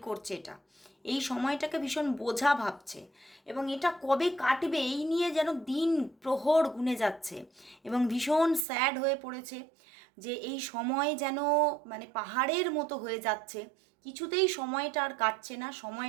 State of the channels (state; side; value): drops out; left; at 8.7 s